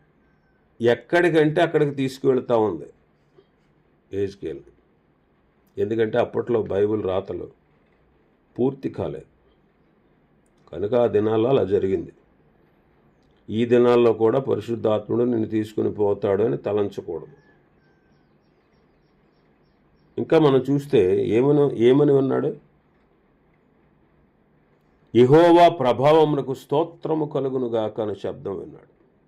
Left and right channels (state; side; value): identical; both; correlation 1.00